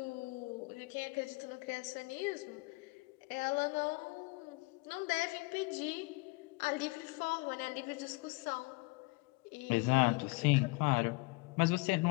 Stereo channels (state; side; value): quieter; right; 25.6 dB